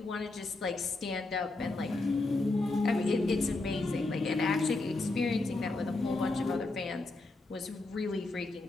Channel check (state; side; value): quieter; right; 3.1 dB